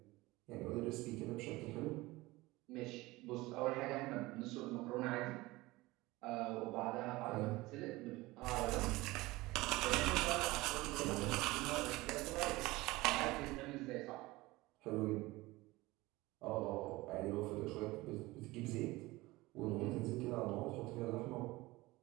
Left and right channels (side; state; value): left; quieter; 20.4 dB